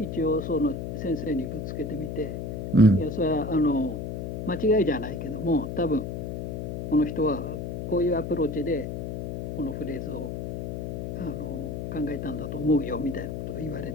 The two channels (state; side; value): noise; left; hum, 5 dB below the sound